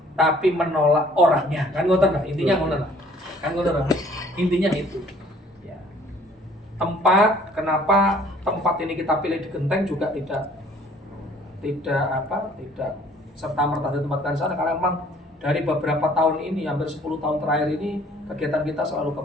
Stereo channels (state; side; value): normal; both; correlation 0.56